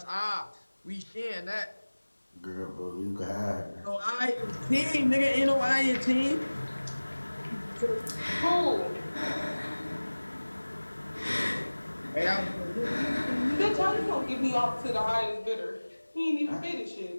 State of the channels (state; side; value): inverted; both; correlation -1.00